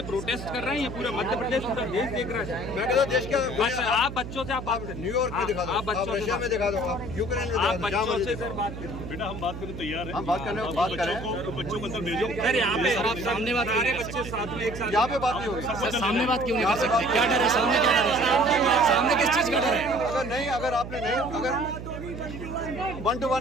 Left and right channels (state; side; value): noise; right; hum, 9 dB below the sound